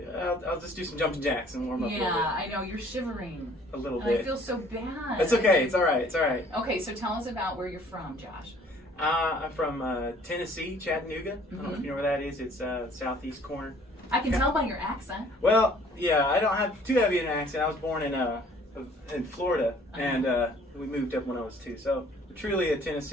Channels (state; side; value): normal; both; correlation 0.56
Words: I'll just do some jumping jacks and warm up a little bit. Yeah, I know, you're shivering. A little And bit. I feel so bad. It's okay, it's alright, it's alright. Okay, so tell us about where you're from, Josh. I'm from Tennessee, Chattanooga. I don't know if you know where that is. It's southeast corner. I can tell by your accent. Well, yeah, I don't have too heavy an accent. I was born in Florida, and we moved up when I was 2. So truly a